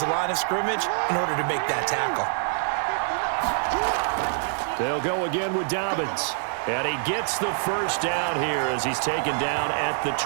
the line of scrimmage in order to make that tackle. They'll go again with Dobbins. And he gets the first down here as he's taken down at the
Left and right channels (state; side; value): silent; left; digital silence